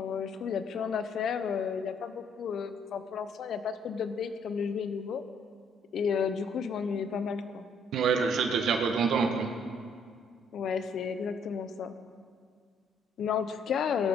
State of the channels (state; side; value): normal; both; correlation 0.65